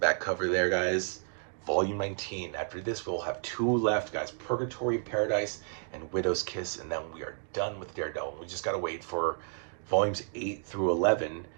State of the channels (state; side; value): silent; left; 57 dB below the other